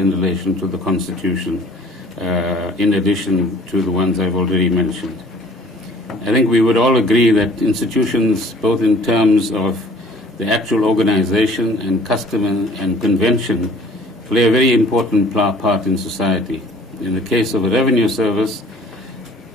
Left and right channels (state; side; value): normal; both; correlation 0.52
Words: relation to the Constitution, in addition to the ones I've already mentioned. I think we would all agree that institutions, both in terms of the actual organization and custom and convention, play a very important part in society. In the case of a revenue service,